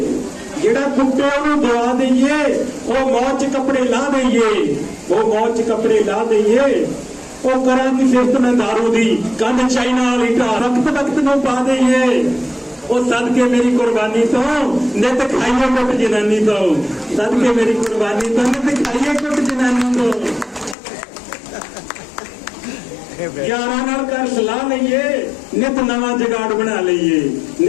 ਜਿਹੜਾ ਕੁੱਟੇ ਉਹਨੂੰ ਦੁਆ ਦੇਈਏ ਉਹ ਮੌਤ 'ਚ ਕੱਪੜੇ ਲਾ ਦੇਈਏ ਉਹ ਮੌਤ 'ਚ ਕੱਪੜੇ ਲਾ ਦੇਈਏ ਉਹ ਕਰਾਂਗੀ ਸਿਫਤ ਮੈਂ ਦਾਰੂ ਦੀ ਕੰਨ ਚਾਈਨਾ ਵਾਲੀ ਢਾ ਰਖਤ ਵਕਤ ਨੂੰ ਪਾ ਦੇਈਏ ਉਹ ਸਦਕੇ ਮੇਰੀ ਕੁਰਬਾਨੀ ਤੋਂ ਨਿਤ ਖਾਈਏ ਕੁੱਟ ਜਨਾਨੀ ਤੋਂ ਸਦਕੇ ਮੇਰੀ ਕੁਰਬਾਨੀ ਤੋਂ ਨਿਤ ਖਾਈਏ ਕੁੱਟ ਜਨਾਨੀ ਤੋਂ ਯਾਰਾਂ ਨਾਲ ਕਰ ਸਲਾਹ ਲਈਏ ਨਿਤ ਨਵਾਂ ਜਗਾੜ ਬਣਾ ਲਈਏ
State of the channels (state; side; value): drops out; right; at 20.8 s